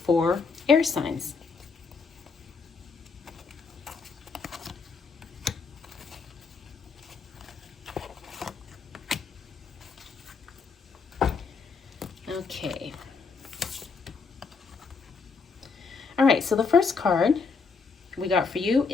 air signs. Okay. All right, so the first card we got for you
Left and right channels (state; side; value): quieter; right; 4.9 dB